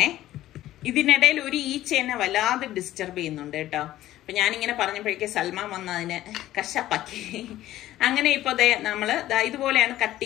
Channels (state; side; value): quieter; right; 14.3 dB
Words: ഇതിനിടയിൽ ഒരു ഈച്ചേനെ വല്ലാതെ ഡിസ്റ്റർബ് ചെയ്യുന്നുണ്ട് കേട്ടോ. അപ്പം ഞാനിങ്ങനെ പറഞ്ഞപ്പോഴേക്ക് സൽമാൻ വന്ന് അതിനെ കശപ്പാക്കി. അങ്ങനെ ഇപ്പോൾ നമ്മൾ ഇതുപോലെയാണ് കട്ട്